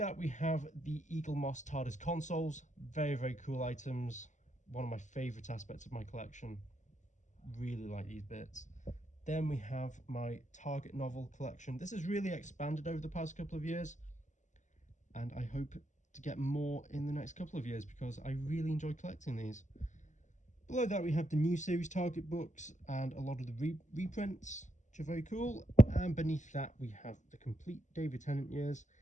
we have the Eaglemoss TARDIS consoles. Very, very cool items. One of my favourite aspects of my collection. Really like these bits. Then we have my Target novel collection. This has really expanded over the past couple of years, and I hope to get more in the next couple of years because I really enjoy collecting these. Below that we have the new series Target books and a lot of the reprints, which are very cool. And beneath that we have the complete David Tennant years,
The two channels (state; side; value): late; right; 0.35 ms